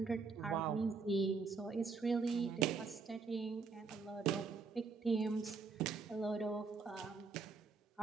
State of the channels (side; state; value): left; quieter; 4.7 dB